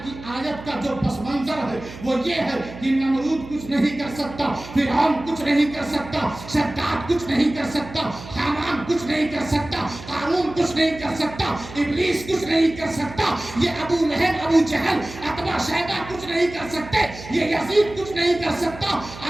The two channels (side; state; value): right; noise; hum, 14 dB below the sound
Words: آیت کا جو پس منظر ہے وہ یہ ہے کہ نمرود کچھ نہیں کر سکتا، فرعون کچھ نہیں کر سکتا، شداد کچھ نہیں کر سکتا، حامان کچھ نہیں کر سکتا، قارون کچھ نہیں کر سکتا، ابلیس کچھ نہیں کر سکتا، یہ ابو لہب، ابو جہل، عتبہ شیبہ کچھ نہیں کر سکتے، یہ یزید کچھ نہیں کر سکتا۔